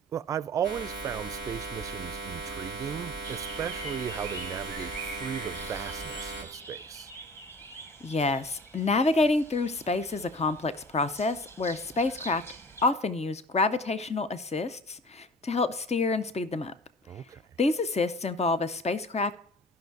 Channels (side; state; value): both; normal; correlation 0.43